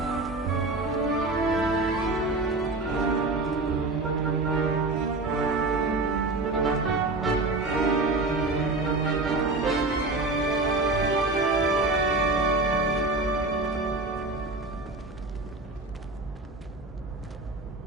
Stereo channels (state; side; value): quieter; left; 3.1 dB